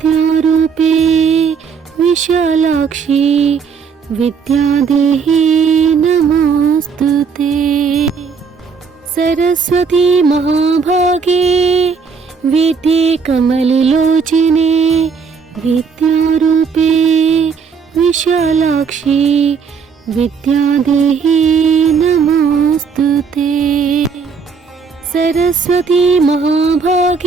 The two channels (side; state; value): left; quieter; 5.7 dB